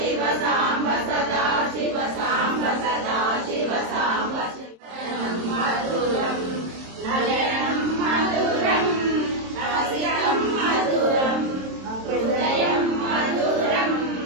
सांब सदा शिव सांब सदा शिव सांब मधुरं नयनं मधुरं रसिकं मधुरं हृदयं मधुरं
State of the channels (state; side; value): late; left; 27 ms